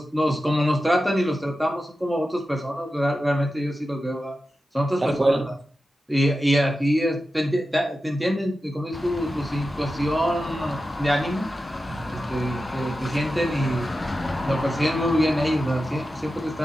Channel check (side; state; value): both; normal; correlation 0.92